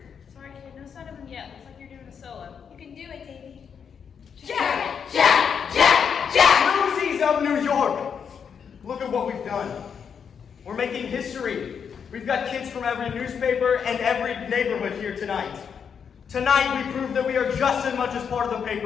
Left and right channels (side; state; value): right; quieter; 7.0 dB